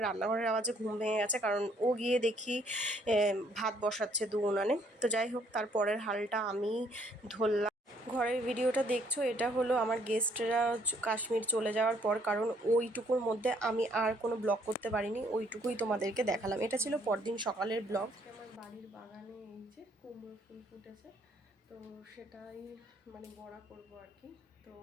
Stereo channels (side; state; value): both; normal; correlation 0.66